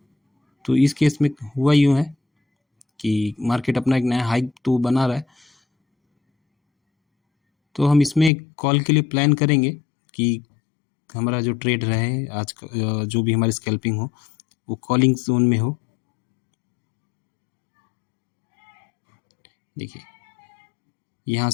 तो इस केस में हुआ यूँ है कि मार्केट अपना एक नया हाइक तो बना रहा है, तो हम इसमें एक कॉल के लिए प्लान करेंगे कि हमारा जो ट्रेड रहे आज का, जो भी हमारी स्कैल्पिंग हो वो कॉलिंग जोन में हो। देखिए यहाँ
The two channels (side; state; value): right; drops out; at 8.3 s